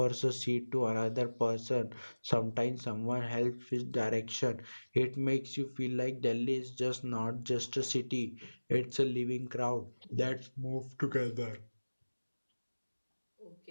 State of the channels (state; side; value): inverted; both; correlation -1.00